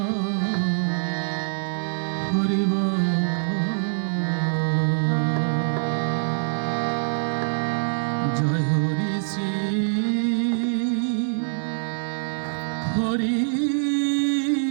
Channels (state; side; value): silent; left; digital silence